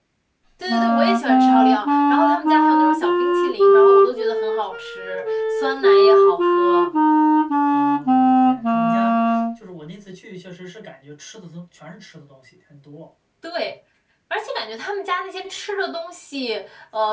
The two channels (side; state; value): both; identical; correlation 1.00